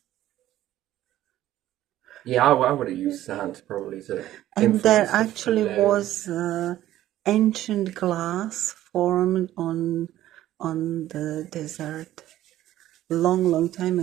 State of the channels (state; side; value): quieter; left; 13.7 dB